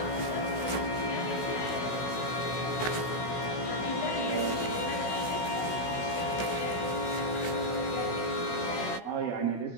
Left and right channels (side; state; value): right; late; 16 ms